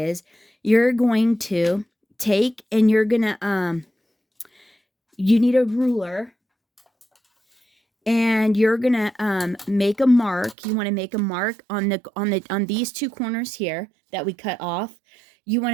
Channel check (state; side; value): drops out; left; at 10.6 s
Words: you're going to take and you're going to, you need a ruler and you're going to make a mark. You want to make a mark on these 2 corners here that we cut off. You want